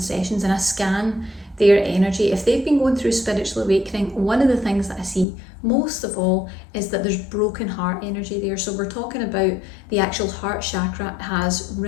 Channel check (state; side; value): drops out; right; at 5.2 s